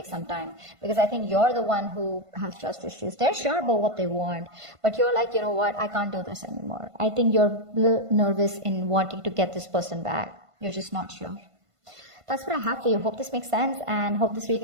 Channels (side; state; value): left; late; 1.5 ms